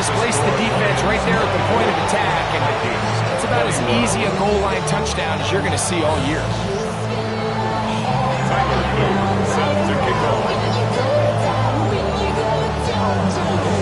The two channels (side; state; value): both; identical; correlation 1.00